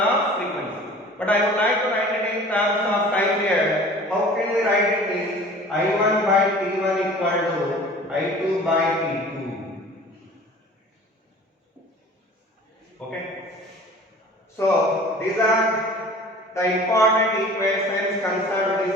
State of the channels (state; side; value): normal; both; correlation 0.44